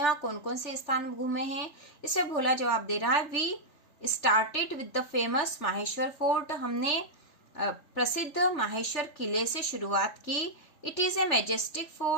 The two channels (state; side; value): late; right; 3.3 ms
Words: वहां कौन कौन से स्थान घूमे हैं? इसे भोला जवाब दे रहा है we started with the famous Maheshwar fort, हमने प्रसिद्ध माहेश्वर किले से शुरुआत की। It is a majestic